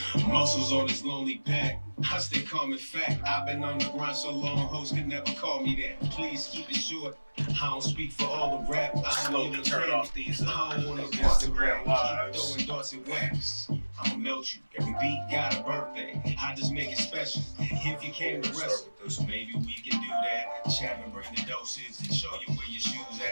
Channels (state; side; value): inverted; both; correlation -1.00